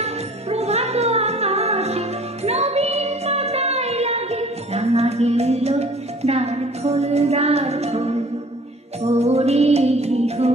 প্রভাত আকাশে। নবীন পাতায় লাগে রাঙা গেল দ্বার খোল দ্বার খোল, ওরে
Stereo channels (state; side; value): normal; both; correlation 0.50